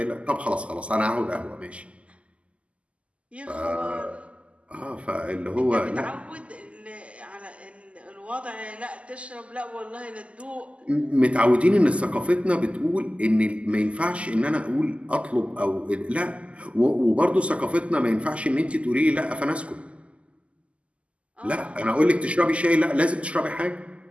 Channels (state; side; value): late; left; 0.059 ms